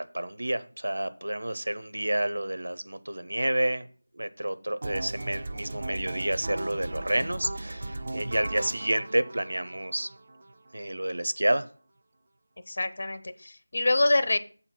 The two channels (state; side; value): inverted; both; correlation -0.98